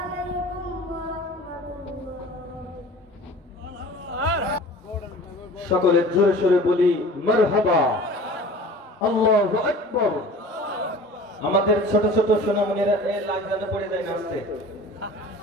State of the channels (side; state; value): both; normal; correlation 0.42